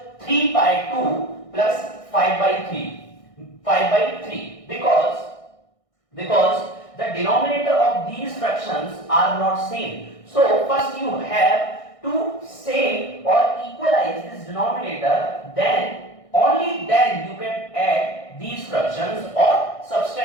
3 by 2 plus 5 by 3 because the denominator of these fractions are not same. So first you have to same or equalize this denominator, then only then you can add these fractions or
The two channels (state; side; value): late; right; 1.6 ms